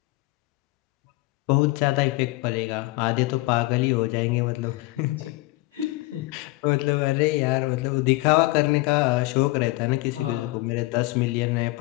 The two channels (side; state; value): right; quieter; 21.2 dB